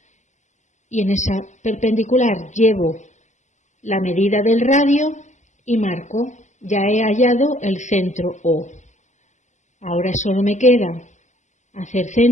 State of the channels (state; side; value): late; right; 0.35 ms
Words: y en esa perpendicular llevo la medida del radio y marco. Ya he hallado el centro O. Ahora solo me queda hacer